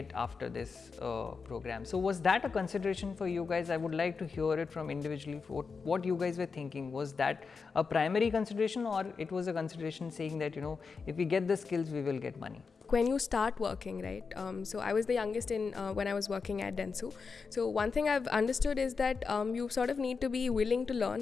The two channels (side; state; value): right; quieter; 5.1 dB